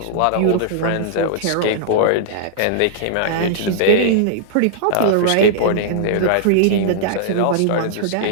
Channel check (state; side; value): different; both; correlation -0.01